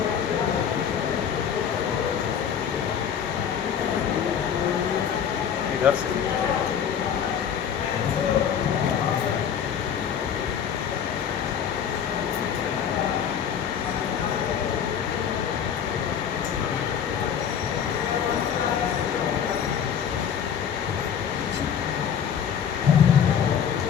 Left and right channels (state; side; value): quieter; right; 8.2 dB